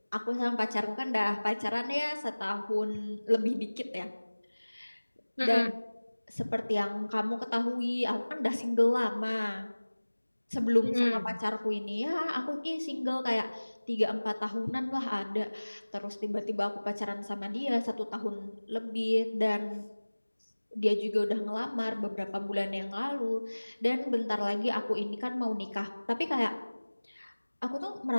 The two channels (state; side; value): inverted; both; correlation -1.00